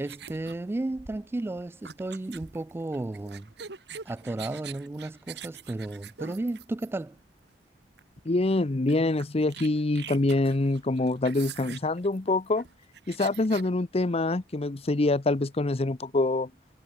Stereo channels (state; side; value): normal; both; correlation 0.63